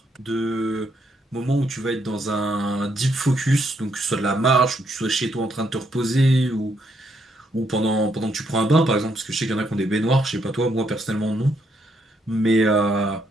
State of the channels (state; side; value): normal; both; correlation 0.75